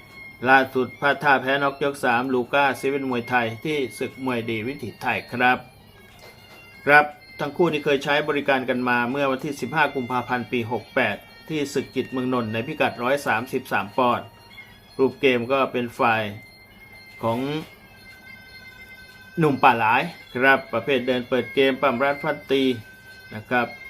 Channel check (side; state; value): both; identical; correlation 1.00